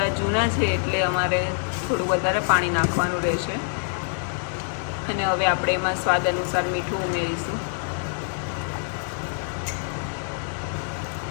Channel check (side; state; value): right; silent; digital silence